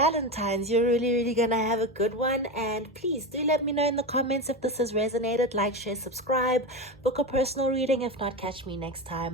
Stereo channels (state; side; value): normal; both; correlation 0.19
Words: You're really gonna have a good one. And please do let me know in the comments if this has resonated. Like, share, subscribe, book a personal reading. If not, catch me next